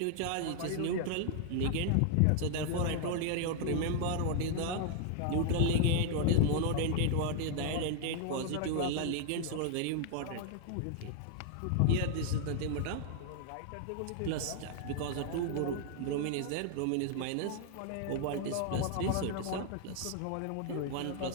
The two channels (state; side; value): different; both; correlation 0.00